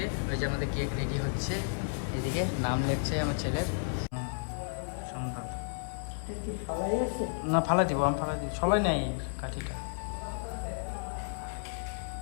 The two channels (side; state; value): right; silent; 56 dB below the other